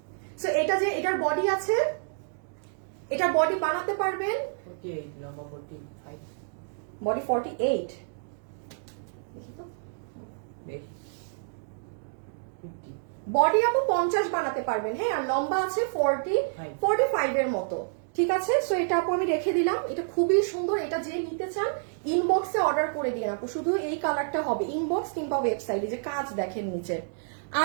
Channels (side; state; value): left; silent; digital silence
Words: সো এটা যে এটার বডি আছে, এটা বডি বানাতে পারবেন 48, লম্বা 45, বডি 48, দেখি তো বেশি 50, বডি আপু 50 বানাতে পারবেন। হ্যাঁ, আর লম্বা আছে 45 এর মতো, ঠিক আছে? সো এটা আপু আমি রেখে দিলাম, এটা খুবই সুন্দর। এটা যে নিতে চান ইনবক্সে অর্ডার করে দিন আপু, শুধু এই কালারটা হবে ইনবক্স কিংবা ওয়েবসাইটে। যে কাজ দেখেন নিচে,